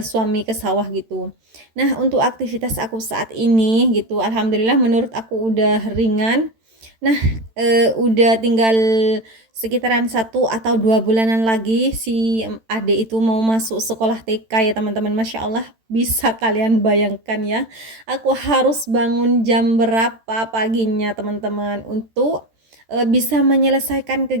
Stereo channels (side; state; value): left; late; 13 ms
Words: suami ke sawah gitu. Nah, untuk aktivitas aku saat ini gitu, alhamdulillah menurut aku udah ringan. Nah, udah tinggal sekitaran 1 atau 2 bulanan lagi si adik itu mau masuk sekolah TK ya teman-teman. Masya Allah, bisa kalian bayangkan ya, aku harus bangun jam berapa paginya teman-teman untuk bisa menyelesaikan